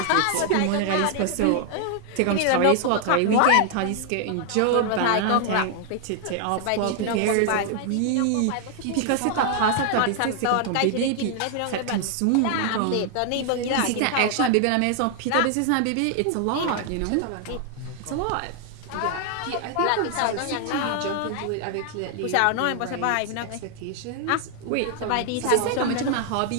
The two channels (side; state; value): both; different; correlation 0.00